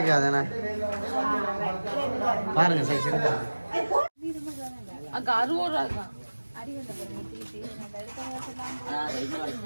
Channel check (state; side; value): inverted; both; correlation -1.00